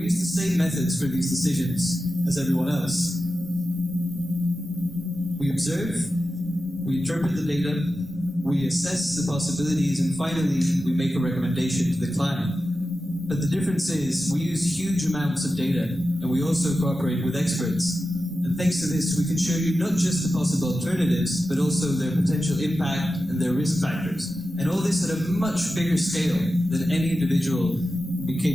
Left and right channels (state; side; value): normal; both; correlation 0.93